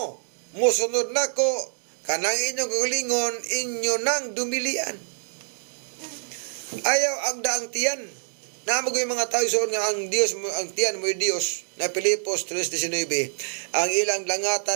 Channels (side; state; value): left; silent; digital silence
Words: mosunod nako, kanang inyong kaugalingon, inyo nang dumilian. Ayaw agda ang tiyan. Namo yung mga tao soon nga ang Dios mo, ang tiyan mo Dios na Pilipos 3:19, ang ilang